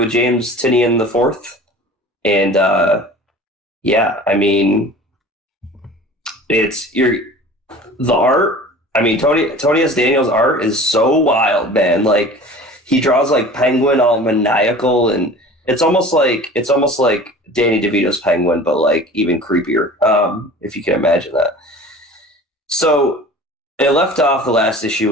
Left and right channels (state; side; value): normal; both; correlation 0.41